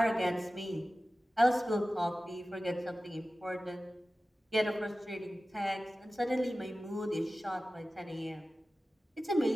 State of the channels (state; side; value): normal; both; correlation 0.96